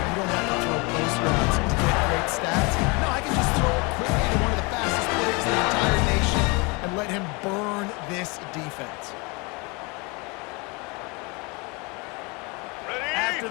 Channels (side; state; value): right; quieter; 28.5 dB